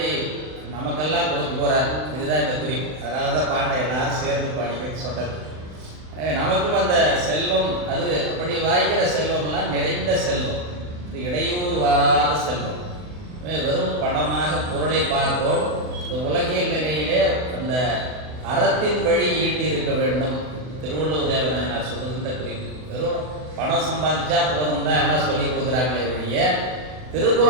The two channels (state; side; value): late; left; 39 ms